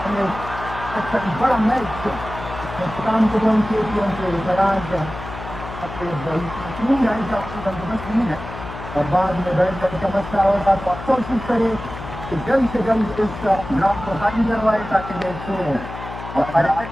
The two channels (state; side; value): noise; left; hum, 11 dB below the sound